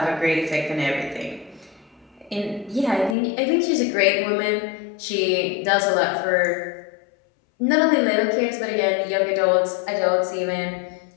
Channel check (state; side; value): drops out; right; at 3.2 s